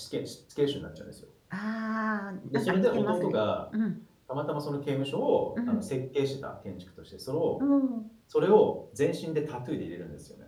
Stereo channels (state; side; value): identical; both; correlation 1.00